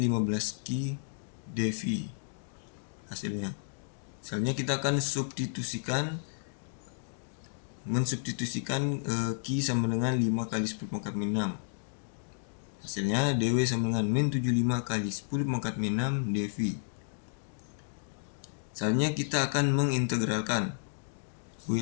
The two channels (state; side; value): silent; right; digital silence